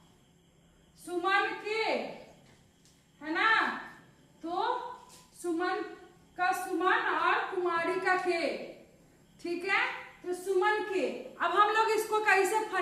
सुमन के, है ना, तो सुमन का सुमन और कुमारी का के, ठीक है, तो सुमन के। अब हम लोग इसको कैसे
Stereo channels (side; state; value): both; identical; correlation 1.00